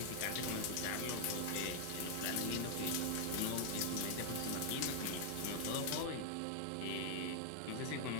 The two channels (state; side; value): different; both; correlation 0.00